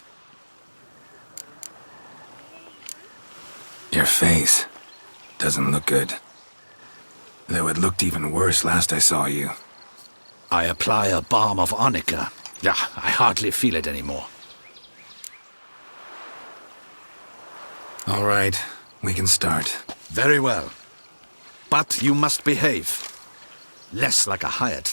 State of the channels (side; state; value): both; inverted; correlation -1.00